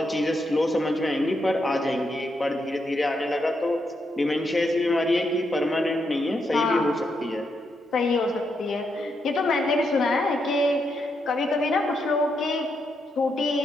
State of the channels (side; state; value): both; normal; correlation 0.81